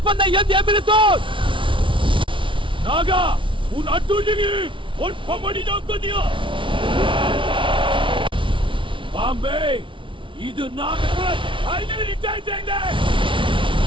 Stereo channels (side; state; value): left; late; 0.25 ms